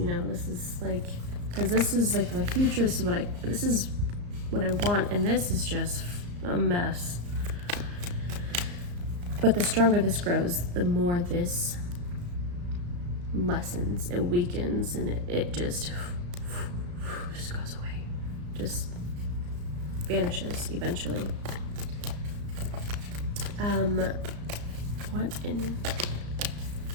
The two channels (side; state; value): left; late; 34 ms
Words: know, this is like, because this is like my future. This is what I want, and this is just a mess. But the stronger this grows, the more this lessens, it weakens, and it just goes away, just vanishes eventually. What in